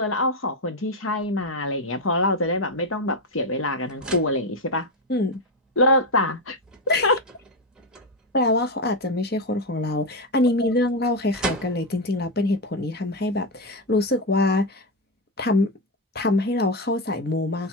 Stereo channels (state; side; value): normal; both; correlation 0.09